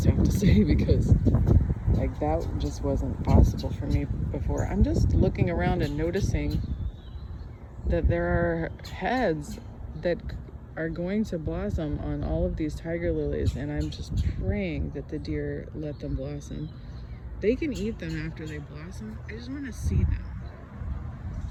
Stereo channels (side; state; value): both; identical; correlation 1.00